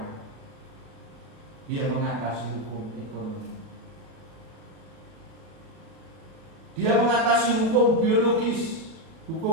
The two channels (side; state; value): left; late; 37 ms